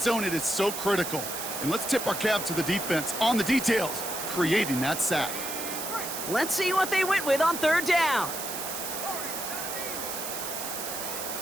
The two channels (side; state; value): right; noise; hiss, 5 dB below the sound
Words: zone, it is so critical. And let's tip our cap to the defense on the details, creating that sack. Let's see what they went with on 3rd down.